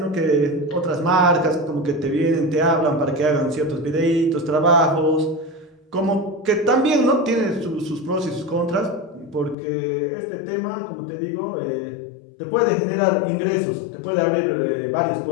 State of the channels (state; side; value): drops out; right; at 9.6 s